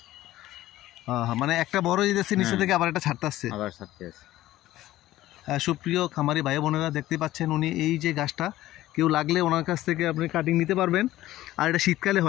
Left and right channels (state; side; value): quieter; right; 15.3 dB